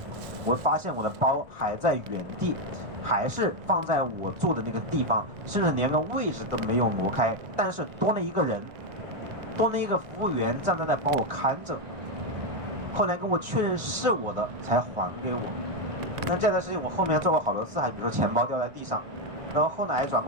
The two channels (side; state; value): left; late; 1.4 ms